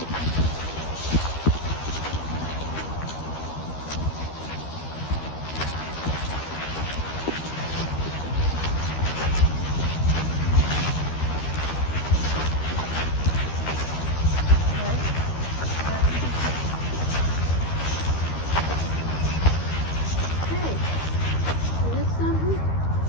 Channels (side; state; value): right; late; 13 ms